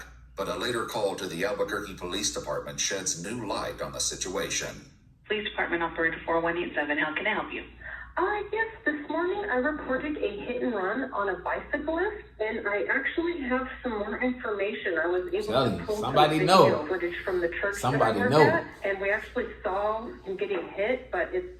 but a later call to the Albuquerque Police Department sheds new light on the situation. Police Department Operator 4187, how can I help you? Yes, this morning I reported a hit and run on a bicyclist, and I actually have some more information. I was able to pull some video footage from the church that I work at, and we actually saw him getting hit, but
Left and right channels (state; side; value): identical; both; correlation 1.00